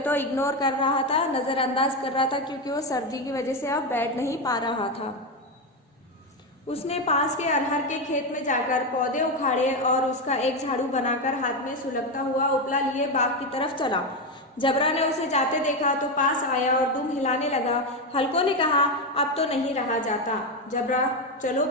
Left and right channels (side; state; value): both; normal; correlation 0.11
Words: इग्नोर कर रहा था, नज़रअंदाज कर रहा था, क्योंकि वो सर्दी की वजह से अब बैठ नहीं पा रहा था। उसने पास के अरहर के खेत में जाकर पौधे उखाड़े और उसका एक झाड़ू बनाकर हाथ में सुलगता हुआ उपला लिए बाग की तरफ चला। जबरा ने उसे जाते देखा तो पास आया और दुम हिलाने लगा। हल्को ने कहा, अब तो नहीं रहा जाता। जबरा, चलो